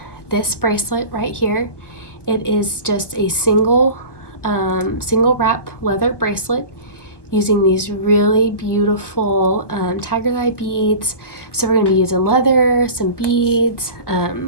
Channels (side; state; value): right; late; 1.2 ms